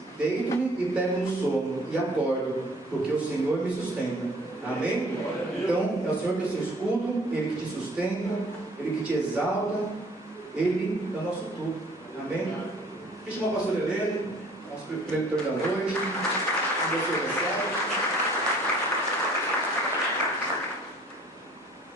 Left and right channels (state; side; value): normal; both; correlation 0.54